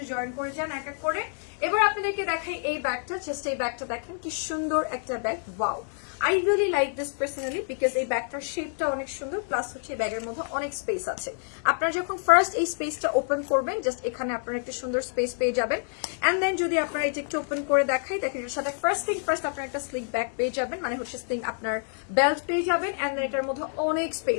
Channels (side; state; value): right; silent; 60 dB below the other